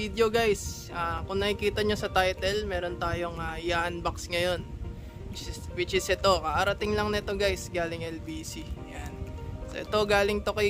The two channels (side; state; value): both; identical; correlation 1.00